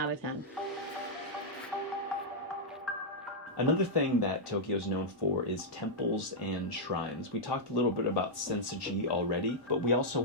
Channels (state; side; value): normal; both; correlation -0.07